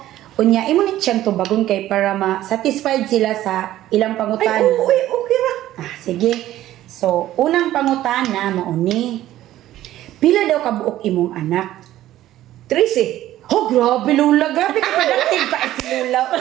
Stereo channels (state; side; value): quieter; left; 14.0 dB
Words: Unya imo ni siyang tubagon kay para ma-satisfied sila sa ilang Ay, pangutana. okay ra. Ah, sige. So, unang pangutana mauni. Pila daw kabuok imong anak? 13. Oh, grabe Lula. Grabe ka productive pa si Lula.